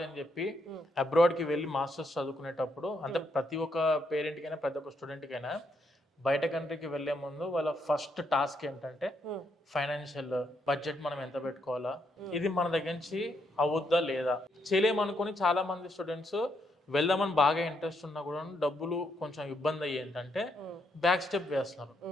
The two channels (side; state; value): both; normal; correlation 0.77